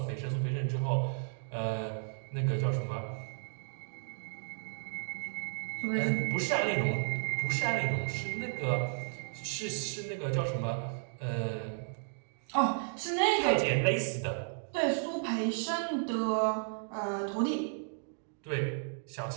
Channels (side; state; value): left; silent; digital silence